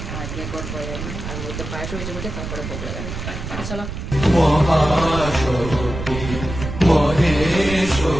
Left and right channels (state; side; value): noise; right; rumble, 7 dB below the sound